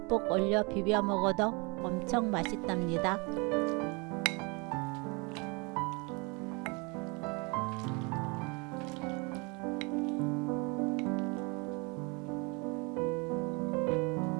올려 비벼 먹어도 엄청 맛있답니다.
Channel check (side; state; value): left; quieter; 29.6 dB